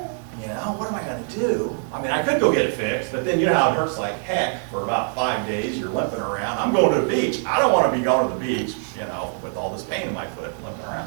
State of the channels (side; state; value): left; silent; 57 dB below the other